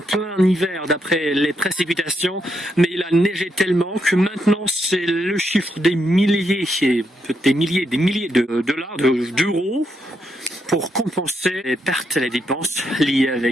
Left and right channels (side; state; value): both; normal; correlation 0.80